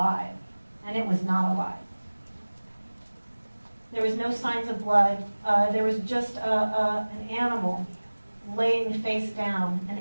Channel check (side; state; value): both; inverted; correlation -1.00